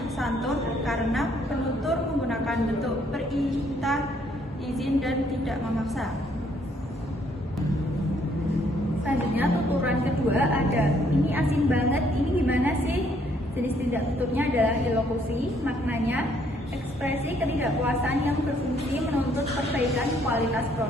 Santun karena penutur menggunakan bentuk perintah, izin, dan tidak memaksa. Selanjutnya tuturan kedua ada, ini asin banget, ini gimana sih? Jenis tidak tuturnya adalah ilokusi, maknanya ekspresi ketidakpuasan yang berfungsi menuntut perbaikan kualitas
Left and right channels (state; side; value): normal; both; correlation 0.67